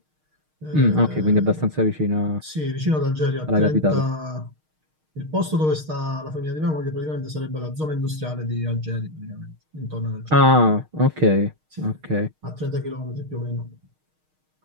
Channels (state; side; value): late; left; 6.5 ms